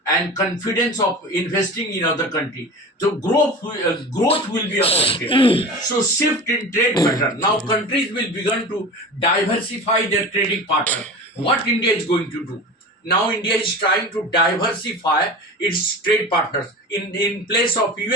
and confidence of investing in other country. So growth will be affected. So shift in trade pattern. Now countries will begin to diversify their trading partner. What India is going to do? Now India is trying to diversify its trade partners. In place of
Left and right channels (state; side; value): normal; both; correlation 0.33